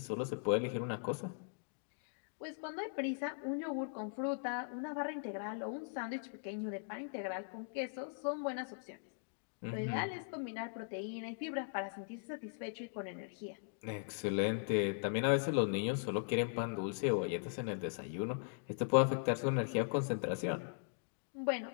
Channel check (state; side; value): silent; right; digital silence